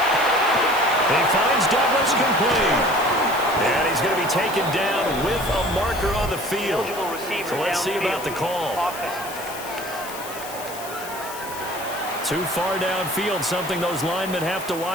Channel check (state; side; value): noise; left; hiss, 13 dB below the sound